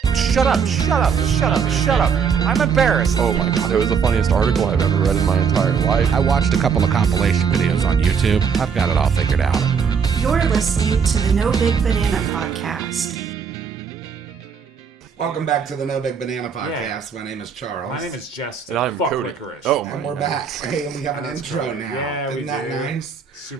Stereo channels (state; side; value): quieter; left; 6.4 dB